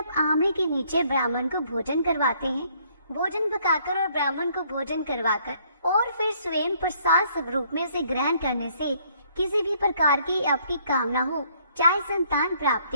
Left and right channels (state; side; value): inverted; both; correlation -0.65